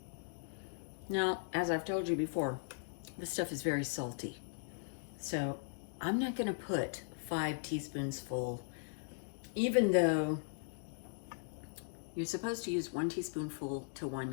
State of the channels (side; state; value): right; silent; digital silence